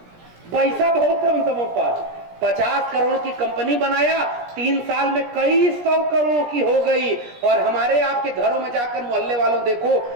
पैसा बहुत है उन सबों पर। 50 करोड़ की कंपनी बनाया, 3 साल में कई 100 करोड़ की हो गई। और हमारे आपके घरों में जाकर मोहल्ले वालों देखो,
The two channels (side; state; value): left; late; 17 ms